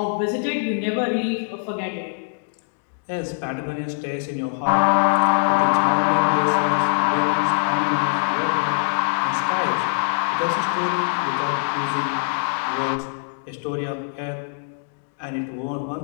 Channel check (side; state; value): right; silent; digital silence